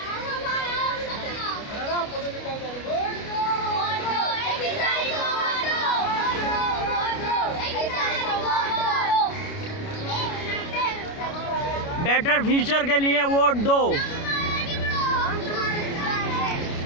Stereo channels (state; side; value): late; right; 29 ms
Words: बेटर फ्यूचर के लिए वोट दो।